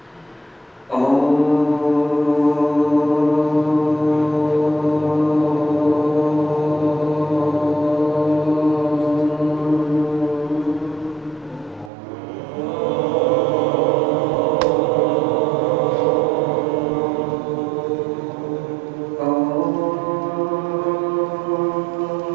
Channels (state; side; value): drops out; left; at 11.9 s